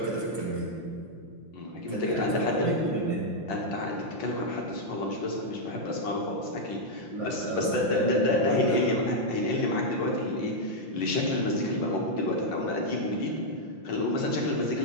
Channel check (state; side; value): late; right; 5.8 ms